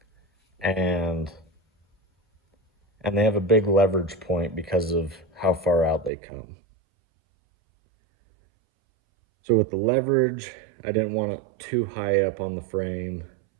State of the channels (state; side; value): drops out; left; at 6.1 s